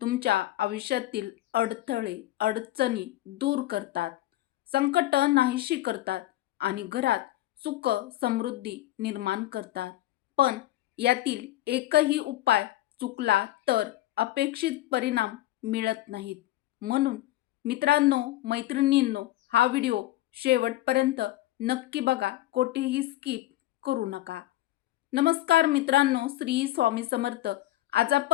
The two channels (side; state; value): right; quieter; 15.6 dB